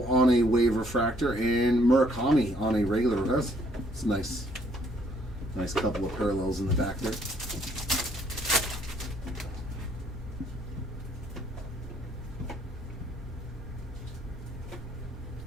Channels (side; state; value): both; normal; correlation 0.66